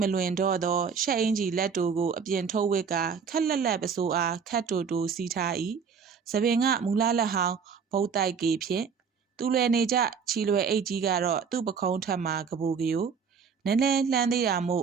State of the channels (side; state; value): left; quieter; 6.2 dB